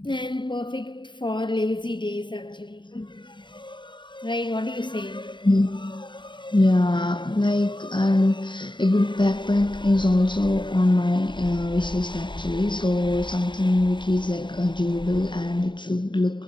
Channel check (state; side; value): late; right; 0.23 ms